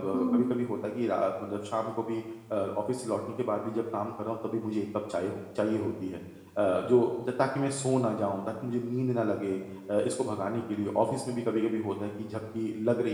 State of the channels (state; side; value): identical; both; correlation 1.00